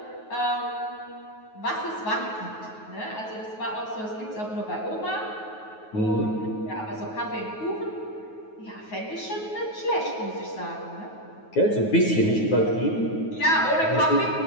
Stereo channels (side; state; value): right; late; 9.4 ms